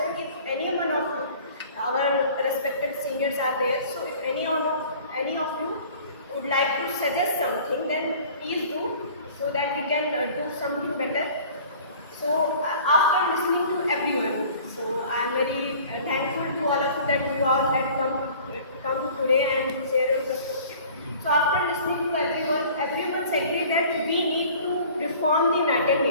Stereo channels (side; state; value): both; inverted; correlation -0.47